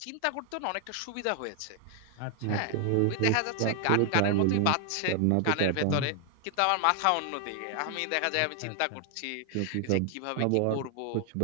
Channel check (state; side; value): different; both; correlation 0.00